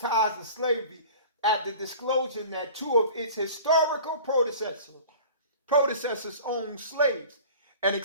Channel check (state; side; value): inverted; both; correlation -0.42